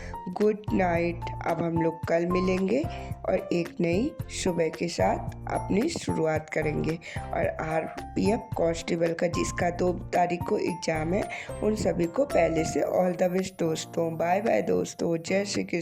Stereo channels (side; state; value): both; identical; correlation 1.00